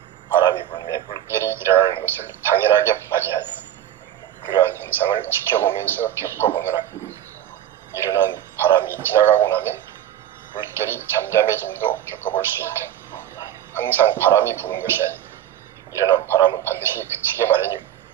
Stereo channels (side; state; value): left; quieter; 11.5 dB